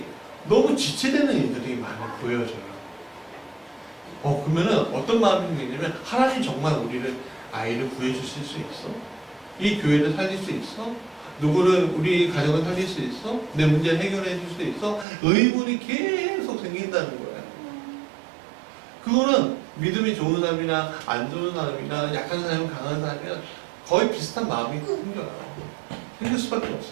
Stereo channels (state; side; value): drops out; left; at 15.1 s